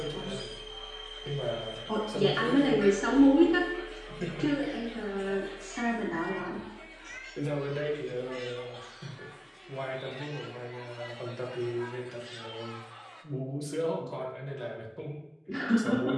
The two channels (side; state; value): both; identical; correlation 1.00